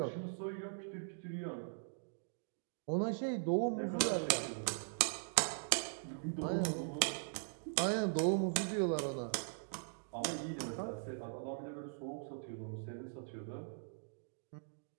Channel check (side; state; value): left; silent; digital silence